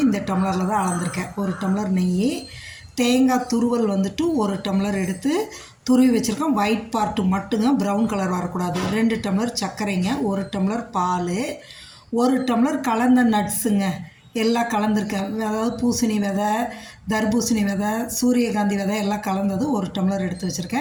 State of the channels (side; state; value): both; identical; correlation 1.00